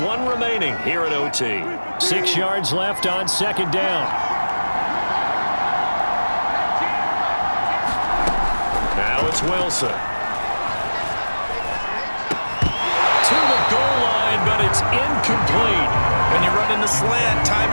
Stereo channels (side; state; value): both; inverted; correlation -1.00